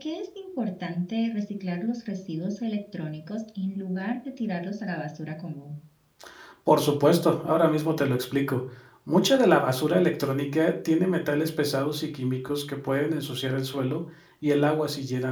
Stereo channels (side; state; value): both; identical; correlation 1.00